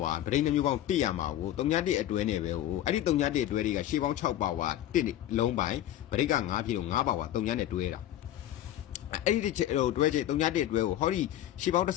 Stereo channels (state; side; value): quieter; right; 12.5 dB